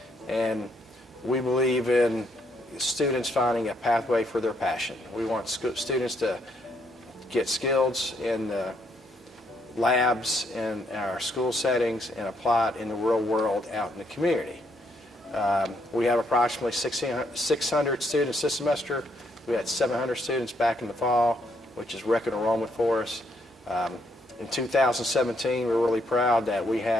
and we believe in students finding a pathway for their passion. We want students to get skills in the labs in our school settings and apply it in the real world out in the community. We have approximately 600 students this semester. We had 700 students back in the fall, which is record enrollment for us. In 2017, we're really proud that we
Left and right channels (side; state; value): both; normal; correlation 0.73